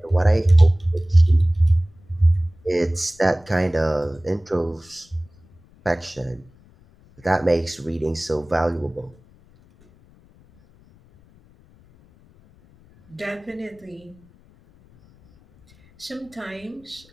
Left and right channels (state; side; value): noise; left; rumble, 28 dB below the sound